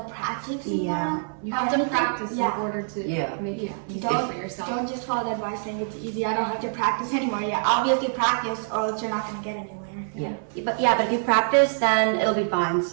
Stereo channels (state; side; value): silent; left; 61 dB below the other